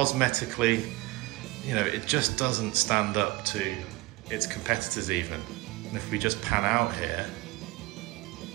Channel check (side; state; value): left; quieter; 21.5 dB